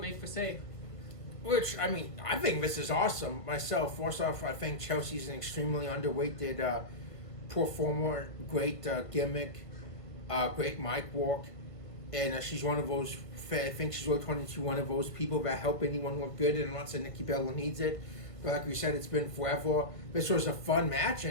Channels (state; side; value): late; right; 1.5 ms